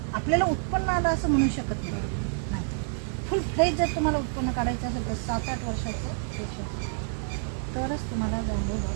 आपल्याला उत्पन्न आलं असं म्हणू शकत नाही. फुल कुठलंही जर तुम्हाला उत्पन्न काढायचं असेल तर 7-8 वर्षाचं पेशन्स, तरच तुम्हाला बँबू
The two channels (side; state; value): left; silent; digital silence